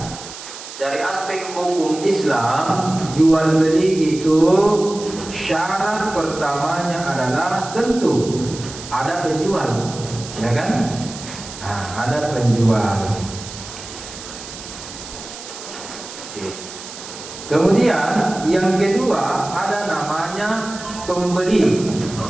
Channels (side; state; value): right; noise; hiss, 13 dB below the sound